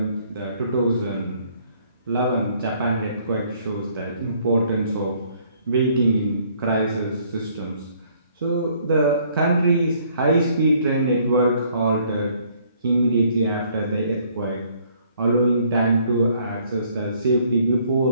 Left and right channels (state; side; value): inverted; both; correlation -0.63